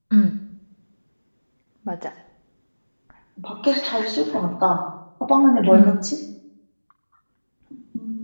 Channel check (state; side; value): inverted; both; correlation -1.00